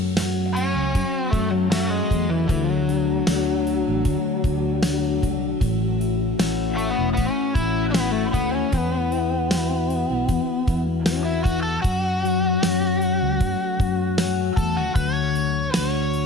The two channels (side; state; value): both; normal; correlation 0.52